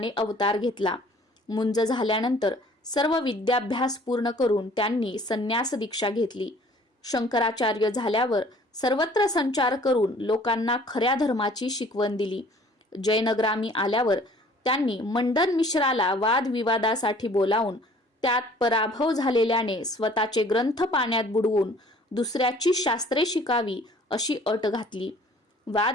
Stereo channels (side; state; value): both; normal; correlation 0.53